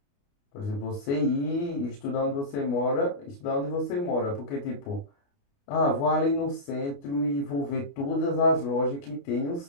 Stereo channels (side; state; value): right; late; 29 ms